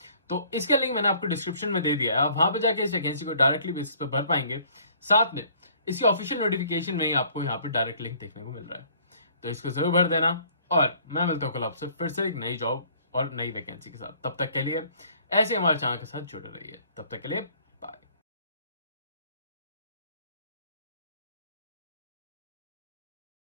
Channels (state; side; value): inverted; both; correlation -0.56